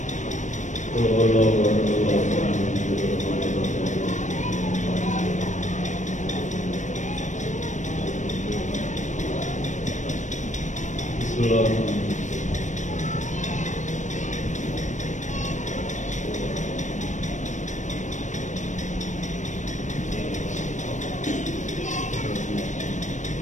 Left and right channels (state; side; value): late; right; 0.35 ms